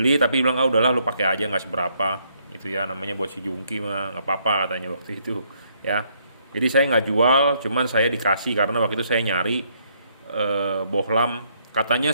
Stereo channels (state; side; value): inverted; both; correlation -0.71